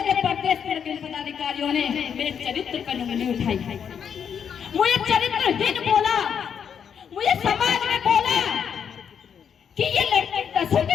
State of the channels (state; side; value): quieter; right; 7.6 dB